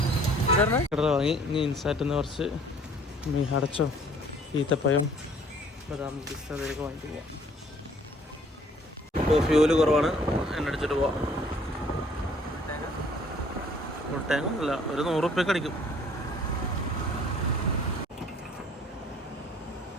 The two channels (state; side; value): normal; both; correlation 0.57